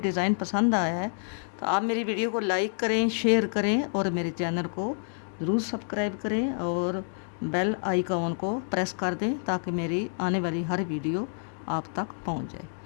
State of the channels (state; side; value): silent; right; digital silence